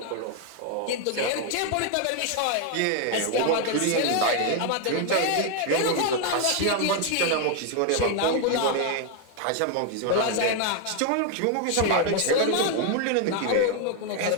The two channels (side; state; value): both; different; correlation 0.01